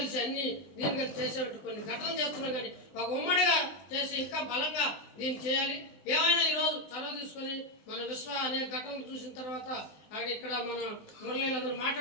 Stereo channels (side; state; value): right; late; 19 ms